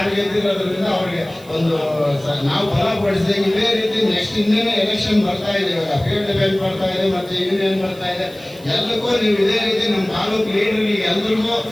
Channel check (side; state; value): right; noise; hiss, 24 dB below the sound